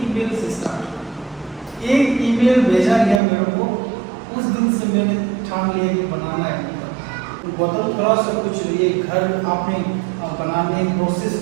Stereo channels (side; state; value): left; drops out; at 3.2 s